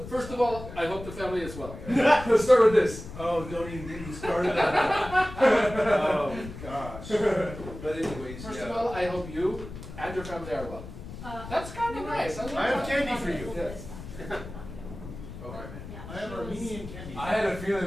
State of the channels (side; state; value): left; noise; rumble, 12 dB below the sound